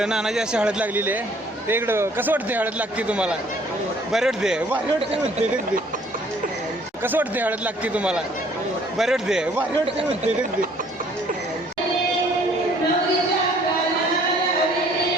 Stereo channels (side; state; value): both; normal; correlation 0.58